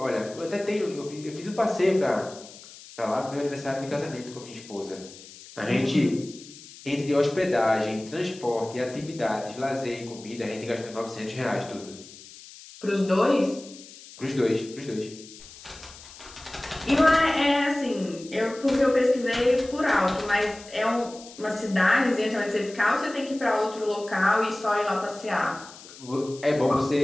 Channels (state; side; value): noise; left; hiss, 18 dB below the sound